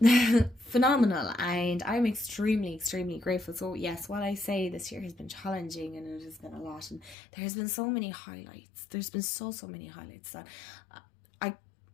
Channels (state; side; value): drops out; right; at 7.2 s